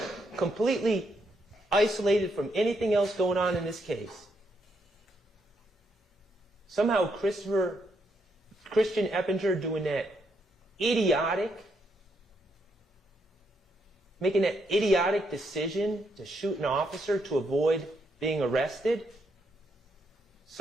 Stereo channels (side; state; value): both; normal; correlation 0.77